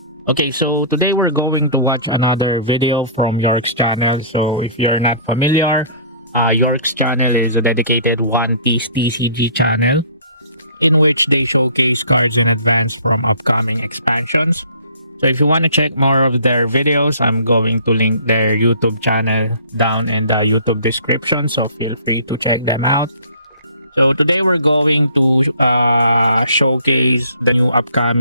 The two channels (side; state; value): both; inverted; correlation -0.51